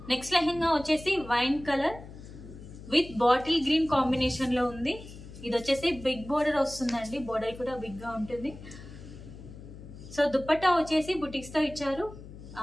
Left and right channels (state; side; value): noise; left; hum, 15 dB below the sound